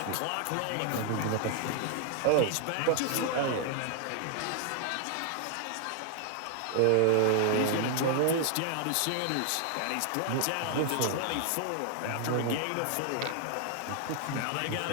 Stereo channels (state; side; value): different; both; correlation 0.00